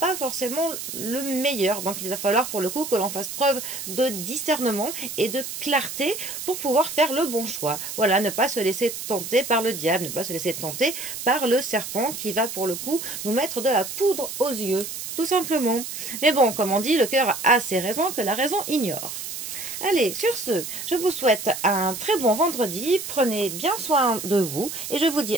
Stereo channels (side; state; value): right; noise; hiss, 7 dB below the sound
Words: forcément le meilleur. Donc il va falloir pour le coup que l'on fasse preuve de discernement et de clarté pour pouvoir faire le bon choix. Voilà, ne pas se laisser tenter par le diable, ne pas se laisser tenter par le serpent qui va pour le coup nous mettre de la poudre aux yeux, tout simplement. Mais bon, comme on dit, le cœur a ses raisons que la raison ignore. Allez, sur ce, je vous souhaite un très bon vendredi, prenez bien soin de vous et je vous dis